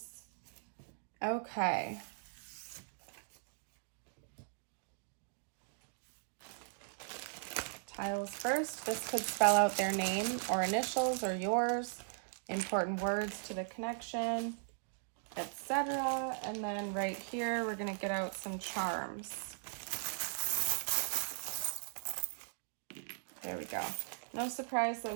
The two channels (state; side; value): silent; left; digital silence